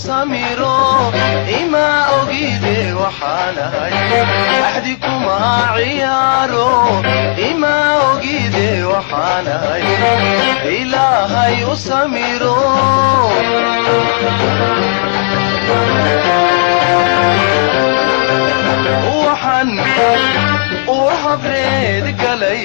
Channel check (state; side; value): silent; right; digital silence